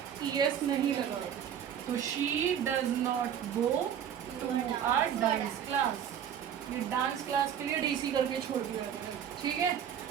ईएस नहीं लगा, तो she does not go to a dance class. ये डांस क्लास के लिए डीसी करके छोड़ दिया गया है, ठीक है।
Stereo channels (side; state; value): left; quieter; 9.0 dB